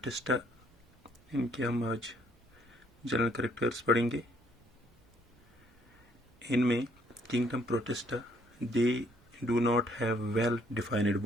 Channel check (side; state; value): both; normal; correlation 0.66